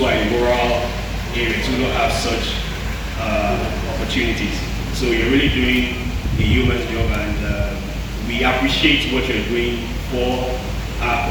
are in rural areas who don't have such opportunities. So you're really doing a human job, and we appreciate what you're doing for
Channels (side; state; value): both; identical; correlation 1.00